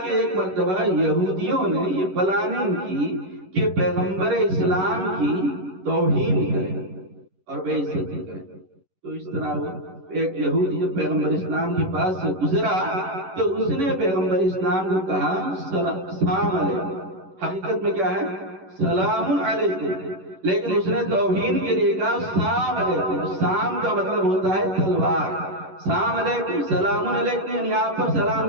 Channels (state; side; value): late; left; 11 ms